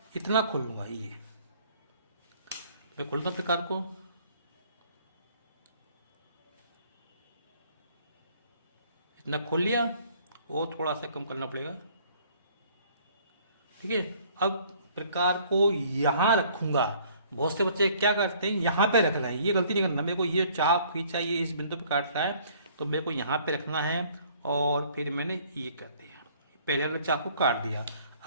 इतना खोल लूंगा। ये मैं खोलता प्रकार को, इतना खोल लिया, वो थोड़ा सा कम करना पड़ेगा। ठीक है। अब प्रकार को यहां रखूंगा। बहुत से बच्चे क्या करते हैं, यहां पे रख रहे हैं, ये गलती नहीं करना। मेरे को ये चाप खींचा, ये इस बिंदु पे काट रहा है, तो मेरे को यहां पे रखना है, और फिर मैंने ये कर दिया, पहले वाले चाप को काट दिया।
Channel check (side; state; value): both; inverted; correlation -0.58